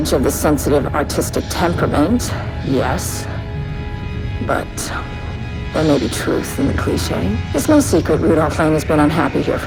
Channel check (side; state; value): both; identical; correlation 1.00